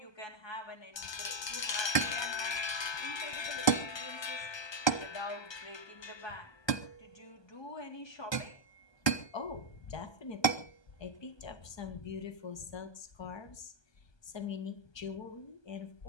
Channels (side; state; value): right; late; 1.2 ms